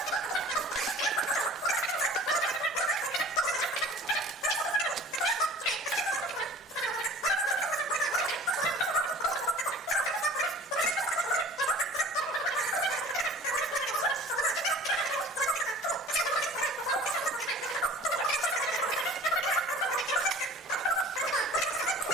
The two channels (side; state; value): both; normal; correlation 0.44